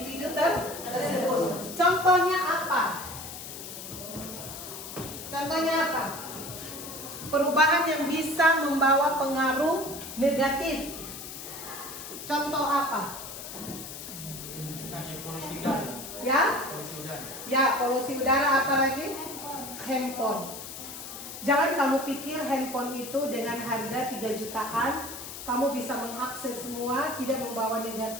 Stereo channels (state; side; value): noise; left; hiss, 10 dB below the sound